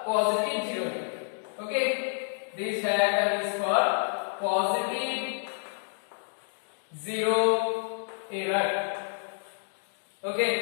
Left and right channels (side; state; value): right; silent; digital silence